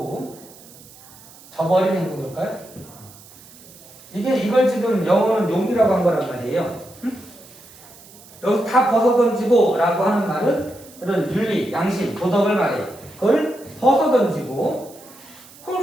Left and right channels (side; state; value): right; noise; hiss, 22 dB below the sound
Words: 저버린 행동일까요? 이걸 지금 영어는 용기라고 한 거란 말이에요. 여기서 다 벗어던지고 라고 하는 말은 그런 윤리, 양심, 도덕을 말해요. 그걸 벗어던지고